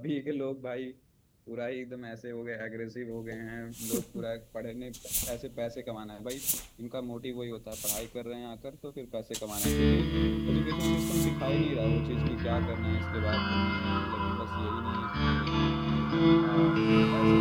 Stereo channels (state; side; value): identical; both; correlation 1.00